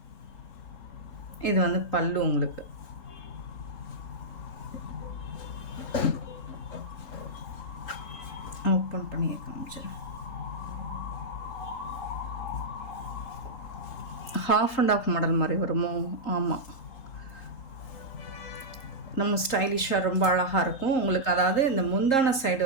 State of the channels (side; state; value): right; late; 3.7 ms